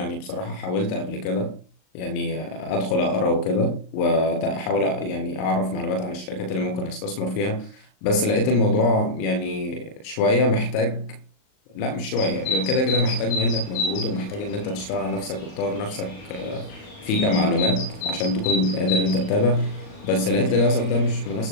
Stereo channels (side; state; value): right; late; 38 ms